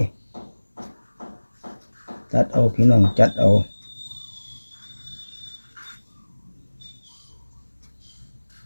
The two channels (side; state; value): both; inverted; correlation -1.00